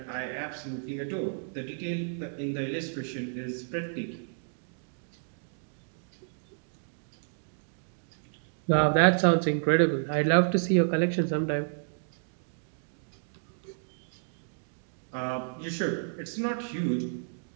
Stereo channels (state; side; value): silent; left; digital silence